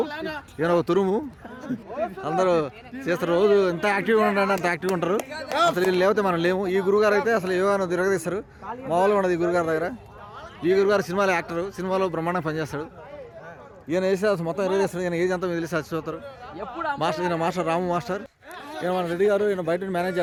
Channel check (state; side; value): identical; both; correlation 1.00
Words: ఈయన ఒక తురుము, అందరూ చేస్తారు. రోజు ఎంత యాక్టివ్గా ఉంటారు అంత యాక్టివ్గా ఉంటారు. అసలు వీళ్ళు లేకపోతే మనం లేము. ఈ గురుగారు అయితే అసలు ఏమైనా తిరగదీస్తారు, మామూలుగా ఉండదు ఈ గురుగారి దగ్గర. ఈ గురుగారు సినిమాలో యాక్టరు, సినిమాలో బ్రహ్మాండంగా పనిచేస్తాడు. ఈయన వేస్తే అసలు మొత్తం చేస్తాడు. ఈయన ఏజ్ అంతా తెలిసి చచ్చిపోతారు. మాస్టర్, ఈయన మాస్టర్ రాము మాస్టర్. ఈయన మన రెడ్డి గారు, ఈయన బయట మేనేజ్